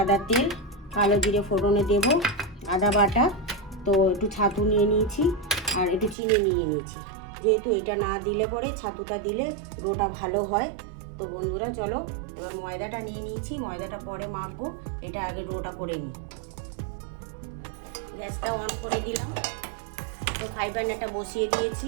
তেল, কালো জিরে ফোড়নে দেব, আদা বাটা, তো একটু ছাতু নিয়ে নিয়েছি আর একটু চিনি নিয়ে নিয়েছি। যেহেতু এটা না দিলে পরে ছাতুটা দিলে ডোটা ভালো হয়। তো বন্ধুরা চলো, এবার ময়দাটা নিয়ে নিয়েছি, ময়দাটা পরে মাখবো, এটা আগে ডোটা করে নিই। গ্যাসটা অন করে দিলাম, তো ফ্রাই প্যানটা বসিয়ে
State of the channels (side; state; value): left; drops out; at 6.2 s